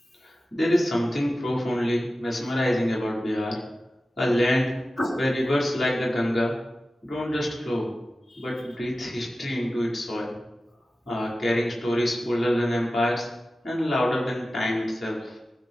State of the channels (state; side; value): normal; both; correlation 0.95